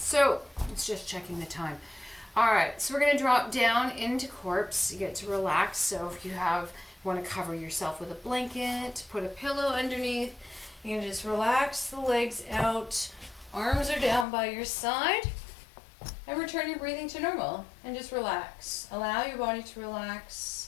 it's just checking the time. All right, so we're going to drop down into corpse. You get to relax. So if you want to cover yourself with a blanket, put a pillow underneath, you can just relax the legs out. Arms are down by your side. And return your breathing to normal and just relax. Allow your body to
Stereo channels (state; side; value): drops out; right; at 14.2 s